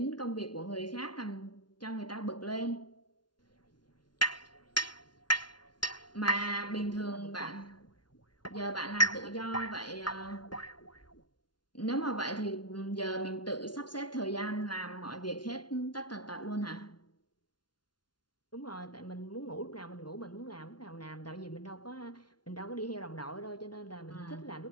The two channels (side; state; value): right; late; 0.70 ms